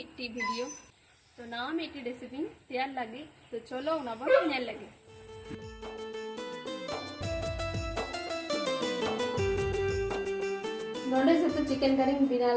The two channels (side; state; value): both; identical; correlation 1.00